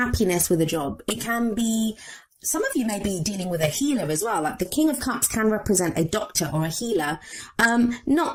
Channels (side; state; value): both; identical; correlation 1.00